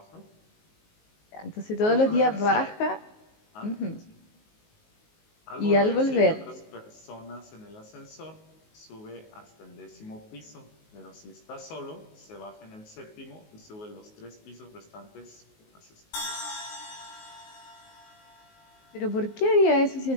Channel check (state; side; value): late; right; 19 ms